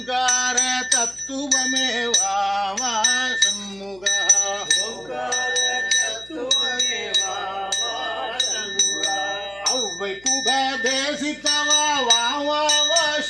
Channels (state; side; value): noise; left; hum, 26 dB below the sound